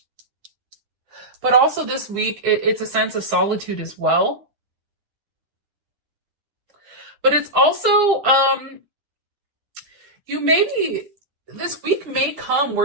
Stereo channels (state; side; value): late; left; 9.9 ms